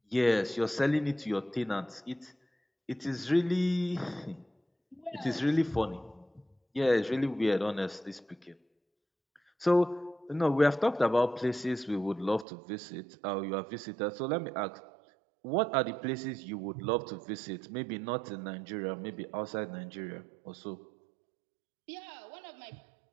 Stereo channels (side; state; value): left; drops out; at 12.5 s